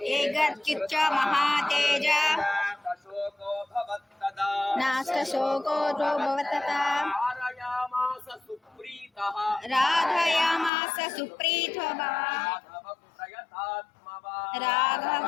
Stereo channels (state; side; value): drops out; right; at 10.7 s